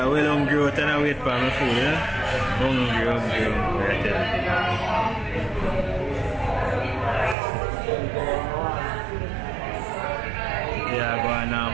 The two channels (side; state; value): left; drops out; at 7.4 s